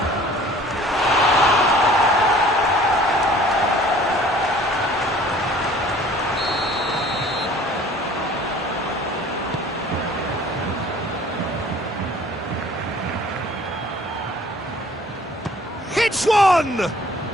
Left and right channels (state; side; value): normal; both; correlation 0.51